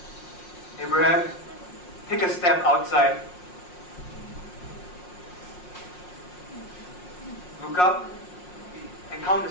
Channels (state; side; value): late; right; 5.6 ms